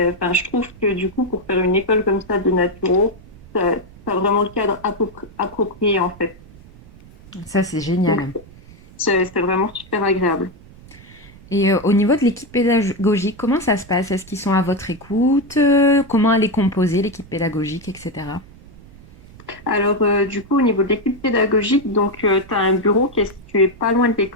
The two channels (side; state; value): right; noise; rumble, 22 dB below the sound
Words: trouve que du coup, pour faire une école comme ça de naturo, tu as vraiment le cadre approprié en fait. Ça, c'est Donc, génial. c'est vraiment super agréable. Et au niveau de l'équipe pédagogique, comment ça se passe? Est-ce qu'ils sont à votre écoute? Comment elle est composée, l'équipe pédagogique, etc. Alors, du coup, au niveau de l'équipe pédagogique, donc, tu as un bureau qui est situé pas loin de